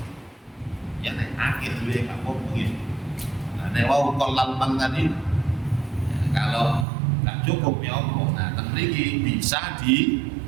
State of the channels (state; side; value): drops out; left; at 6.9 s